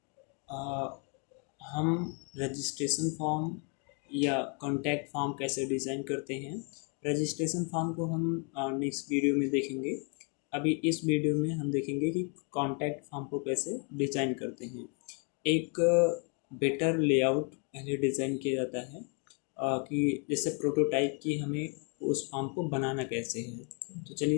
आ, हम रजिस्ट्रेशन फॉर्म या कॉन्टैक्ट फॉर्म कैसे डिज़ाइन करते हैं। रजिस्ट्रेशन फॉर्म को हम नेक्स्ट वीडियो में देखेंगे। अभी इस वीडियो में हम देखेंगे कि कॉन्टैक्ट फॉर्म को कैसे डिज़ाइन करते हैं। एक बेटर लेआउट पहले डिज़ाइन किया जाता है कि जैसे प्रोटोटाइप की हमें उस फॉर्म को बनाना कैसे है। तो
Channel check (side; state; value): right; quieter; 37.4 dB